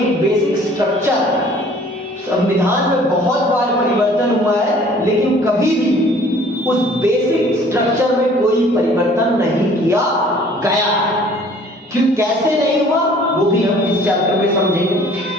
एक बेसिक स्ट्रक्चर, संविधान में बहुत बार परिवर्तन हुआ है लेकिन कभी भी उस बेसिक स्ट्रक्चर में कोई परिवर्तन नहीं किया गया। क्यों, कैसे नहीं हुआ वो भी हम इस चैप्टर में समझेंगे।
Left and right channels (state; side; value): normal; both; correlation 0.53